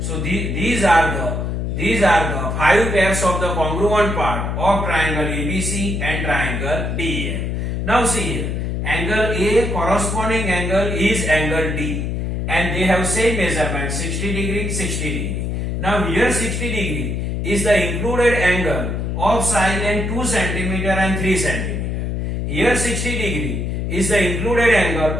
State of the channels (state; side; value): noise; left; hum, 2 dB below the sound